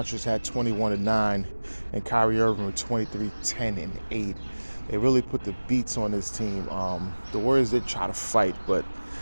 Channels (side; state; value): both; inverted; correlation -1.00